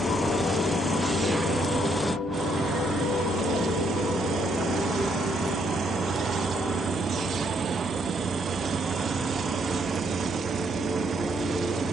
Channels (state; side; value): normal; both; correlation 0.72